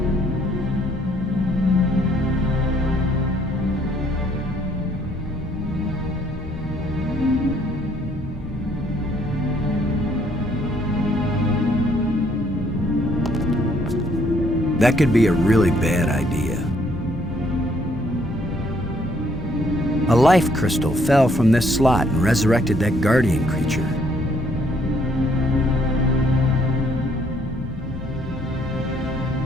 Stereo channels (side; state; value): both; normal; correlation 0.66